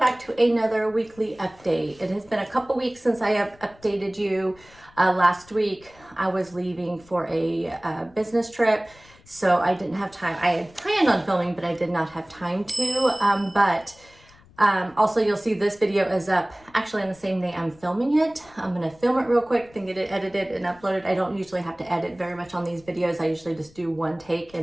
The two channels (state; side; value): noise; left; rumble, 27 dB below the sound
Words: to another weekly update. It has been a couple weeks since I have updated you. Last week I was leaving for a business trip, so I didn't have time. I had planned on filming, but I did not have time to. Also you'll see this video is up actually on the same day I'm filming it. I'm gonna film it real quick, then get it edited and uploaded. I don't usually have to edit very much on these videos. I usually just do one take